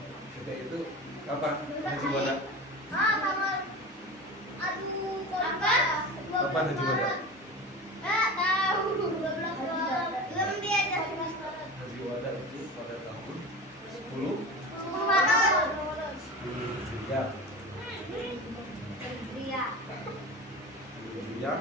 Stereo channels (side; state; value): both; normal; correlation 0.31